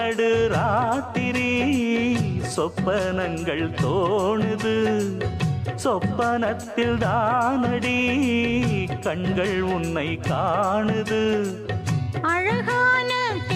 ராத்திரி சொப்பனங்கள் தோணுது. சொப்பனத்தில் தானடி கண்கள் உன்னை காணுது. அழகான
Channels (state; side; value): identical; both; correlation 1.00